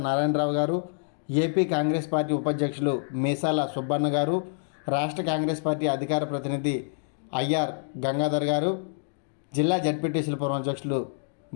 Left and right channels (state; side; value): silent; right; digital silence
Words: నారాయణరావు గారు, ఏపీ కాంగ్రెస్ పార్టీ ఉపాధ్యక్షులు మీసాల సుబ్బన్న గారు, రాష్ట్ర కాంగ్రెస్ పార్టీ అధికార ప్రతినిధి ఐఆర్ గంగాధర్ గారు, జిల్లా జడ్పీటీసీల పూర్వ అధ్యక్షులు